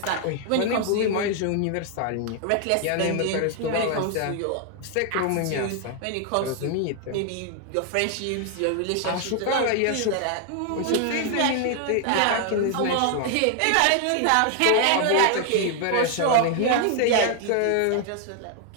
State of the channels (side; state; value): both; different; correlation 0.00